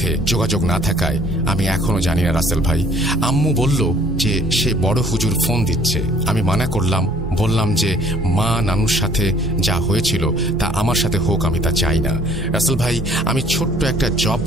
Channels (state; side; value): normal; both; correlation 0.57